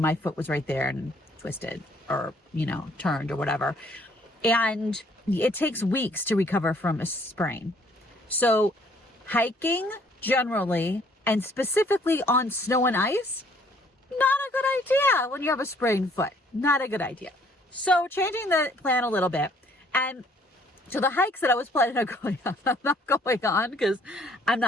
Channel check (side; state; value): both; normal; correlation 0.62